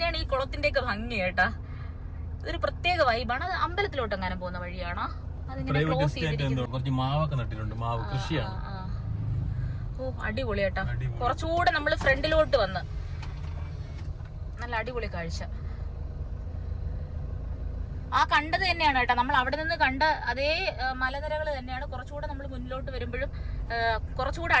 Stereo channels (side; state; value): both; identical; correlation 1.00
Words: ഈ കുളത്തിന്റെ ഒക്കെ ഭംഗി കേട്ടാ. ഇതൊരു പ്രത്യേക വൈബാണ്. അത് അമ്പലത്തിലോട്ട് അങ്ങനെ പോകുന്ന വഴിയാണോ? അതിങ്ങനെ ക്ലോസ് ചെയ്തിരിക്കുന്നു. മാവൊക്കെ നട്ടിട്ടുണ്ട്. മാവ് കൃഷിയാണ്. ഓ അടിപൊളി കേട്ടാ. കുറച്ചുകൂടെ നമ്മള് ഫ്രണ്ടിലോട്ട് വന്ന് നല്ല അടിപൊളി കാഴ്ച. ആ കണ്ടത് തന്നെയാണ് കേട്ടോ. നമ്മൾ അവിടെ നിന്ന് കണ്ട അതേ മലനിരകൾ തന്നെയാണ്. കുറച്ചുകൂടെ നമ്മൾ മുന്നിലോട്ട് വരുമ്പോഴും കുറച്ചുകൂടെ